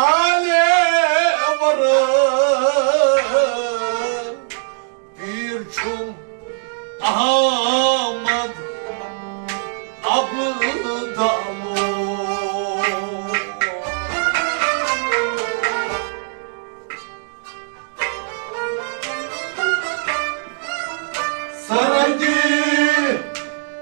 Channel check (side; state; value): left; silent; digital silence